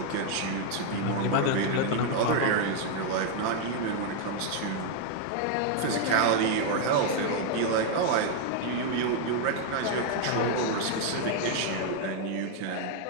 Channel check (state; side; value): different; both; correlation 0.00